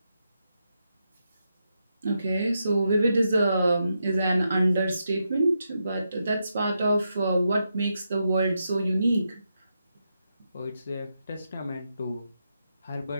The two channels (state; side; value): inverted; both; correlation -0.84